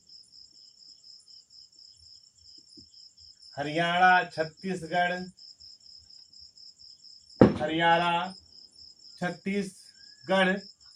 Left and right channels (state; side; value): identical; both; correlation 1.00